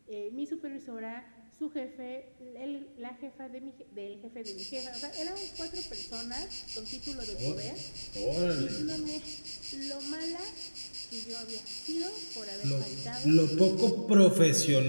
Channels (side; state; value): both; inverted; correlation -1.00